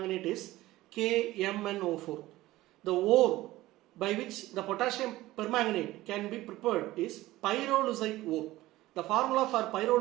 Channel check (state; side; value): quieter; left; 17.2 dB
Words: is KMnO4. The ore by which the potassium permanganate can be prepared is pyrolusite ore. The formula for